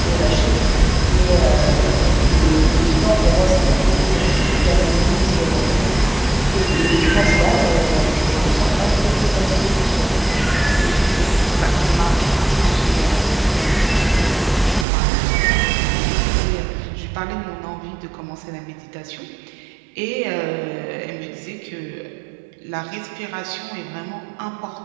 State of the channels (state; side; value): drops out; left; at 14.9 s